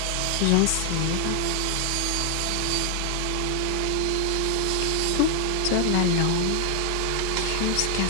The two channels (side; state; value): both; different; correlation 0.00